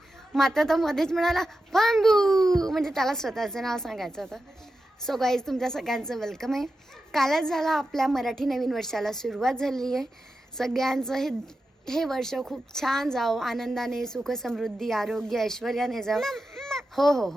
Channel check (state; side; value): normal; both; correlation 0.90